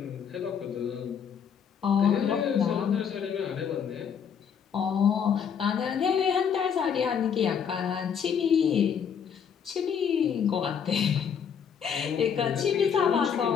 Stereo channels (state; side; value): quieter; right; 7.5 dB